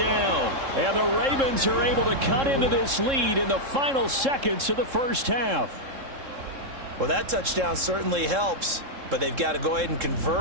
And the Ravens are able to cut into this lead in the final seconds of the first half. Well, that touchdown certainly helps, but they've got to go ahead and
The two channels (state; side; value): late; left; 3.7 ms